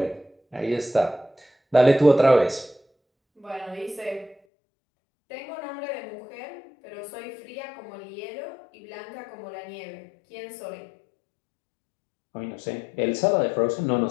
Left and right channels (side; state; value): right; drops out; at 4.4 s